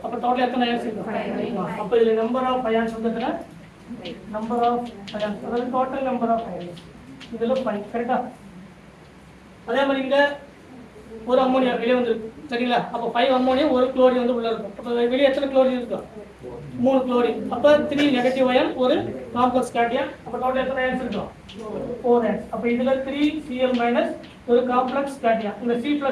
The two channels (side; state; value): both; identical; correlation 1.00